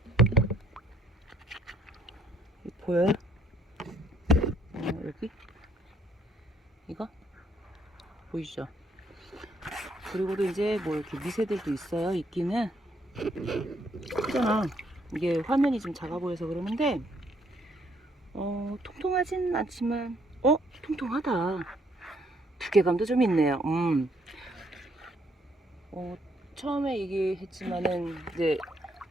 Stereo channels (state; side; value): normal; both; correlation 0.68